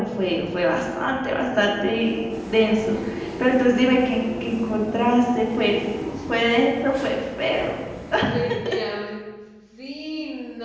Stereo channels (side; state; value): both; identical; correlation 1.00